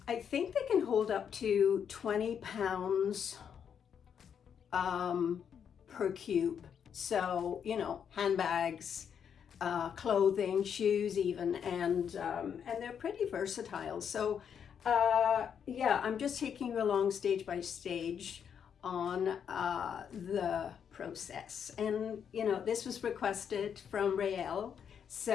I think they can hold up to 20 pounds per cube. So, you know, handbags, clothing, shoes even, and they're pretty versatile. So, yeah, I'm just taking you along stage by stage on the process. And, you know, this was requested from Raelle.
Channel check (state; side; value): quieter; right; 7.8 dB